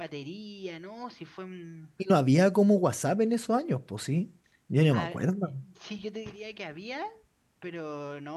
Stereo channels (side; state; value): both; identical; correlation 1.00